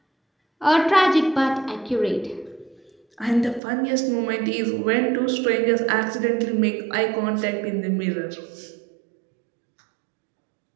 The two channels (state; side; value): drops out; left; at 3.6 s